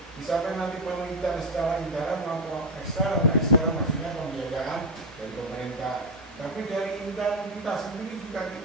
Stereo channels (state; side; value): normal; both; correlation 0.09